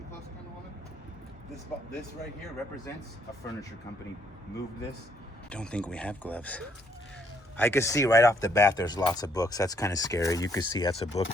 close, kind of woman. This right here represents a furniture company. Moved this. Don't think we have gloves. I could see right off the bat there's lots of books. That's kind of scary. You could see that's a book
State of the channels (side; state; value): both; normal; correlation 0.70